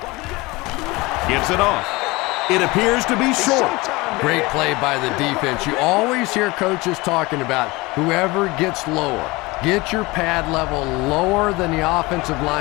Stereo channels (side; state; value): right; quieter; 22.8 dB